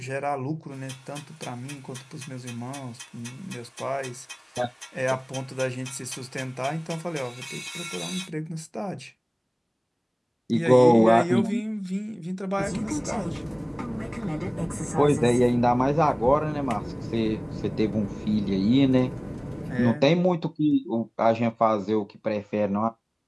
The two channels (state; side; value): identical; both; correlation 1.00